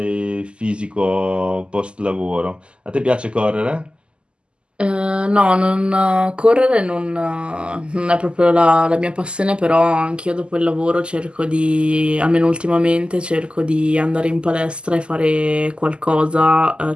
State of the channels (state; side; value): late; left; 0.051 ms